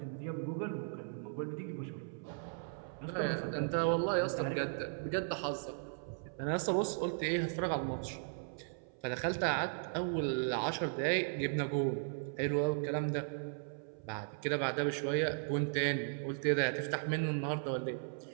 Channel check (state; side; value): silent; left; 53 dB below the other